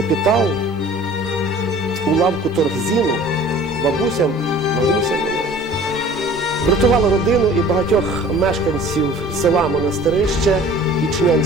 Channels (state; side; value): normal; both; correlation 0.47